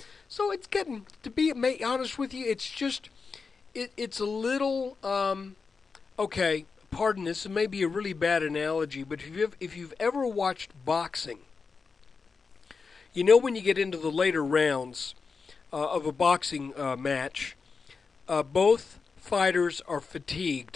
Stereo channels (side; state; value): right; quieter; 4.9 dB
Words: So it's getting, to be honest with you, it's just, it's a little, okay, pardon this, it may be a really bad analogy, but if you've ever watched boxing, when you get into the later rounds of a boxing match, both fighters are